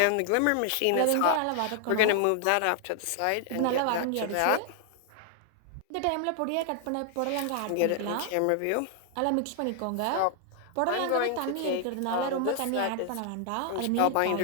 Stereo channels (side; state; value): both; different; correlation 0.00